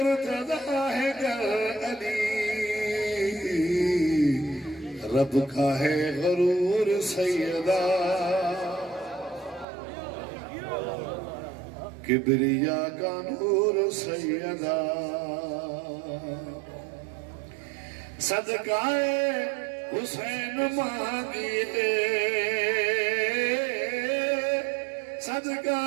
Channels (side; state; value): left; drops out; at 9.7 s